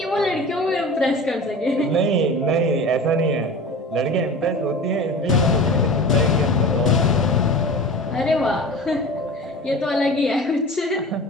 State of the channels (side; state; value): both; normal; correlation 0.35